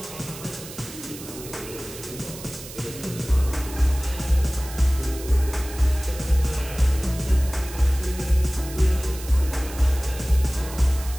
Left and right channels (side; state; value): right; noise; hiss, 14 dB below the sound